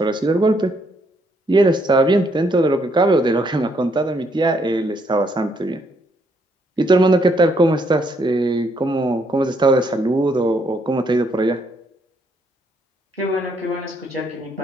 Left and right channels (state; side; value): normal; both; correlation 0.72